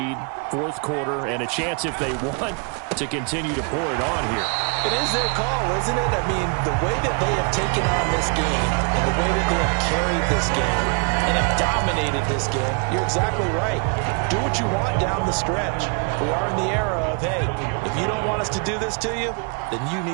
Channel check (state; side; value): quieter; left; 36.4 dB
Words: fourth quarter, and a chance if they want to continue to pour it on here. It is their call, isn't it? I mean, the way that they have taken on this game and the way that they have carried this game and have dominated this game, you're exactly right. Do what you want down the stretch. We are in the era of, hey, if you don't want us to do this to you, then you